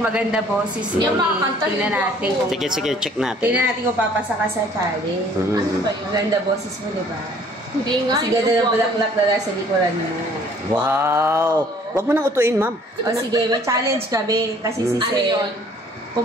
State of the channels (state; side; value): normal; both; correlation 0.57